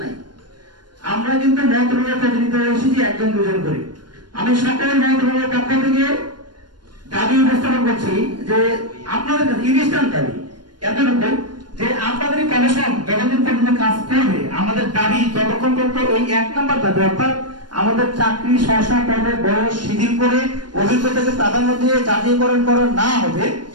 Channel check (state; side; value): late; left; 0.71 ms